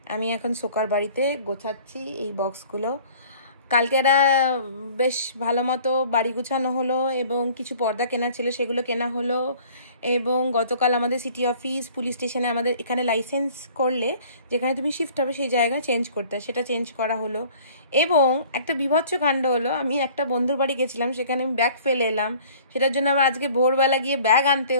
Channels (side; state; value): both; inverted; correlation -0.51